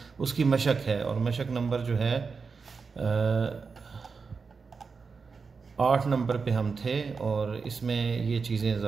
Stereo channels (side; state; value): left; quieter; 5.0 dB